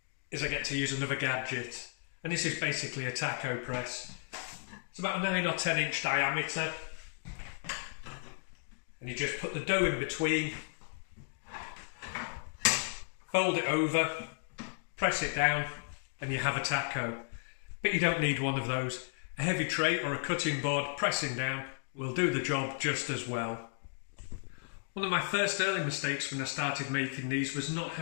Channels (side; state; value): right; silent; digital silence